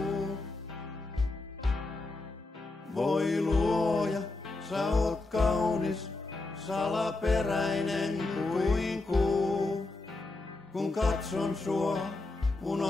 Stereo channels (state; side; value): quieter; right; 3.2 dB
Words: Voi luoja, sä oot kaunis, salaperäinen kuin kuu. Kun katson sua,